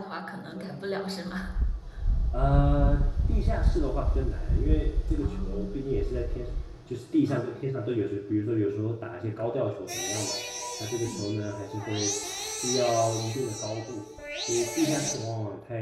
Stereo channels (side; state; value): both; identical; correlation 1.00